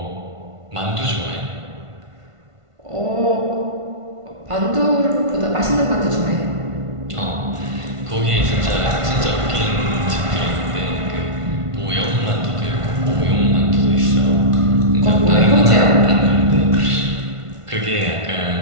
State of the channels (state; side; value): late; left; 1.5 ms